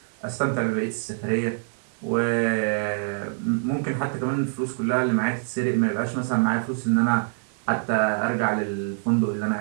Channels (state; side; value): silent; left; digital silence